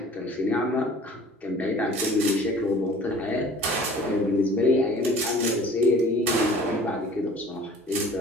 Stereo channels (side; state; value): both; normal; correlation 0.48